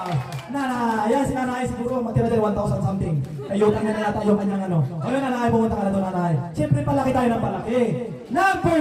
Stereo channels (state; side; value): identical; both; correlation 1.00